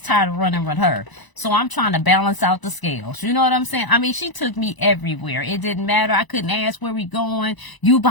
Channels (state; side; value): late; right; 1.0 ms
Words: tired of running with her. So I'm trying to balance out the scales. You know what I'm saying? I mean, she took me everywhere. It didn't matter. I couldn't ask where we going. You